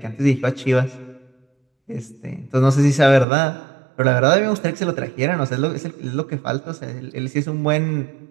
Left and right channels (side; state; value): left; drops out; at 3.2 s